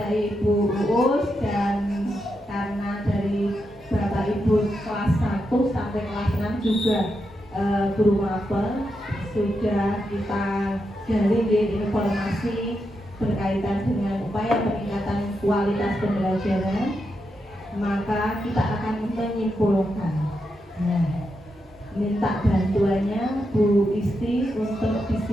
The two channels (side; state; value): both; normal; correlation 0.85